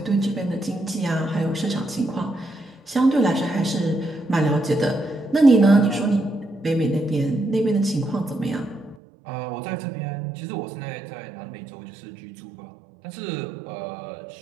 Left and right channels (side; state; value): left; drops out; at 9.0 s